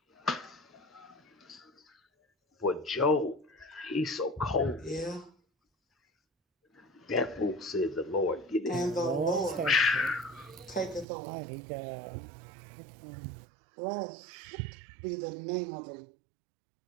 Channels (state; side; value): drops out; left; at 11.1 s